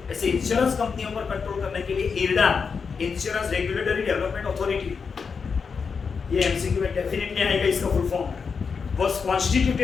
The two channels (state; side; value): quieter; right; 5.6 dB